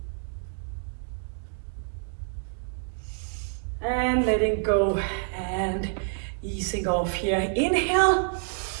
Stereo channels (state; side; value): silent; left; digital silence